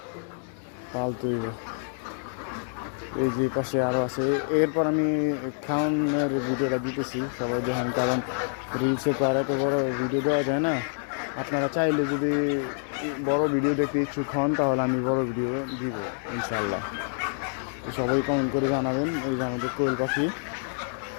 পালতে হইব। এই যে পাশে আরও আছে। এরপর আমি খাওয়ানোর ভিডিওটা দিতেছি সবাই দেখেন, কারণ রিলসে তো আর এত বড় ভিডিও দেওয়া যায় না। আপনারা চাইলে যদি বড় ভিডিও দেখতে ইচ্ছুক হন তাহলে আমি বড় ভিডিও দিব ইনশাল্লাহ। তো সবাই কমেন্ট করে জানাবেন। এই যে আমাদের কোয়েল পাখি।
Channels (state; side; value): silent; right; 60 dB below the other